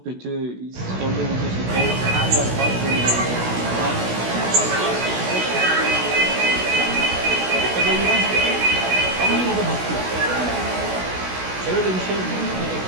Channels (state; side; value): late; left; 16 ms